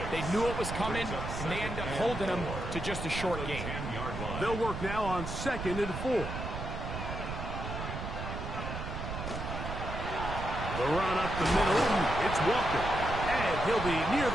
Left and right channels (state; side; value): noise; right; rumble, 6 dB below the sound